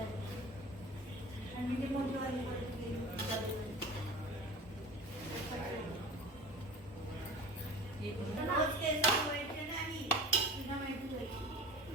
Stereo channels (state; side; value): normal; both; correlation 0.37